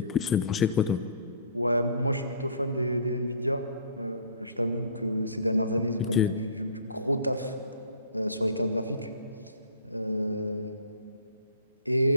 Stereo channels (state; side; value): inverted; both; correlation -0.48